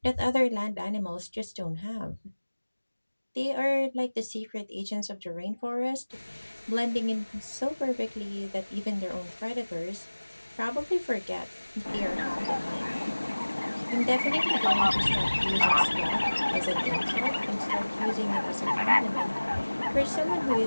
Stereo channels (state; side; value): inverted; both; correlation -1.00